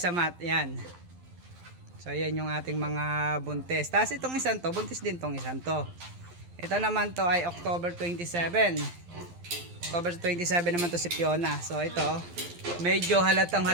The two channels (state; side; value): late; left; 12 ms